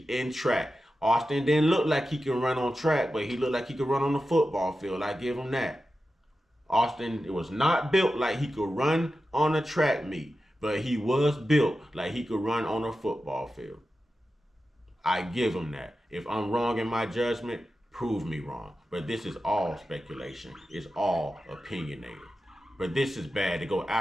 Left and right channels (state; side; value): normal; both; correlation 0.92